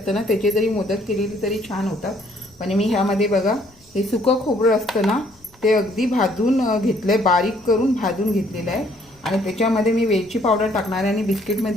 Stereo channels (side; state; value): left; noise; rumble, 29 dB below the sound